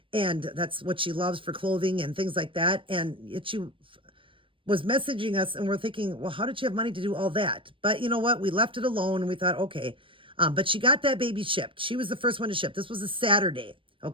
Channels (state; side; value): late; left; 0.25 ms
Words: and that's what she loves for clothing and things like that. And she was messaging us, and we're thinking, well, how did she have money to do all that? But you know what? We left it alone, and we thought, okay. But she got that baby shipped. She was the first one to ship. This was a Saturday.